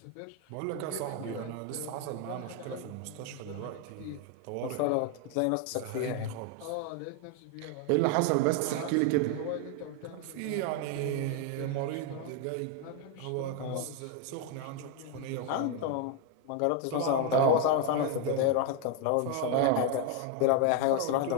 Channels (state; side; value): different; both; correlation 0.01